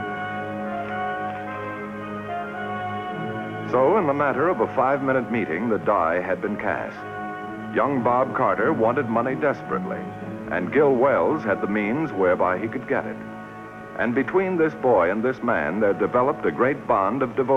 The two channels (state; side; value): identical; both; correlation 1.00